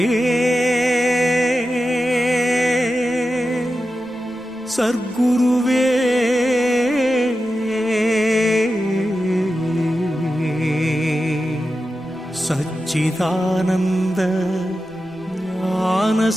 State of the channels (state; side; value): noise; right; rumble, 28 dB below the sound